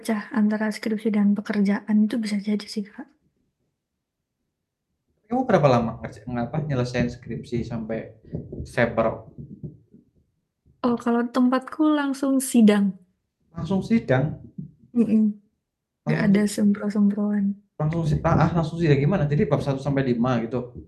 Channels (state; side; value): identical; both; correlation 1.00